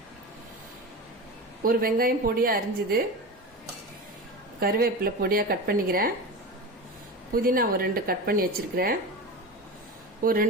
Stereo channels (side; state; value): both; normal; correlation 0.27